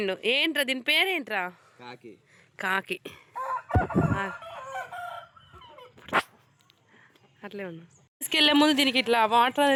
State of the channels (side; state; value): both; identical; correlation 1.00